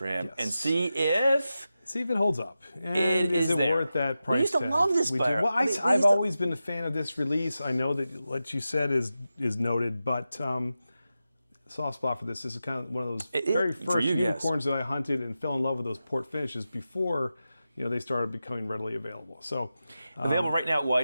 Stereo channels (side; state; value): both; inverted; correlation -0.92